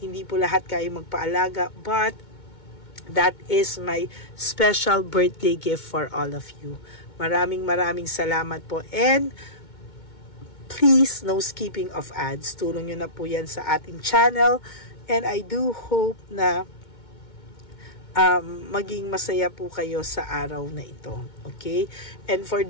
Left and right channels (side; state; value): right; late; 2.2 ms